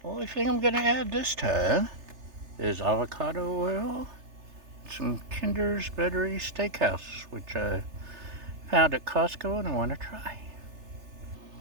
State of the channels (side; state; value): left; late; 3.3 ms